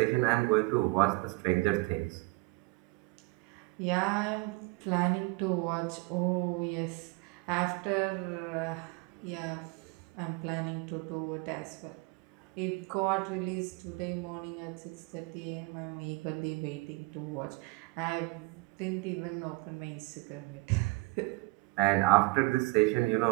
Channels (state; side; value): quieter; left; 25.4 dB